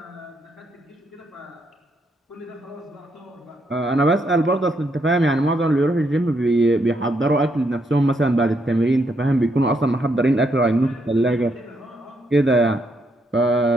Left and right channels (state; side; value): normal; both; correlation 0.77